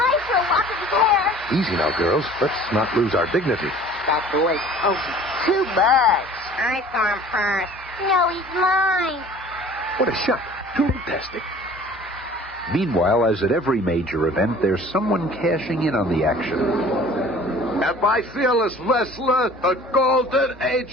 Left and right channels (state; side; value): normal; both; correlation 0.48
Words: for a lock of his hair. Easy now, girls. Let's not lose our dignity. That boy. Oh, he's too much. I saw him first. No, he's mine. What a shot. Too fantastic. Meanwhile, as at every major event, there's someone cashing in on the action. And my fearless wrestler, the Golden